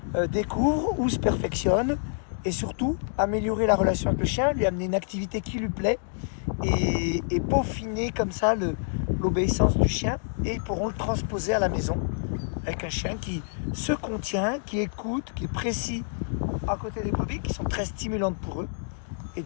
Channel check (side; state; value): right; silent; digital silence